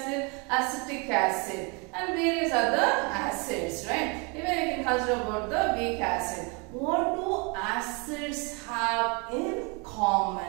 acetic acid and various other acids, right? Even you can consider about the weak acid. What do acids have in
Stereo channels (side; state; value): left; quieter; 31.9 dB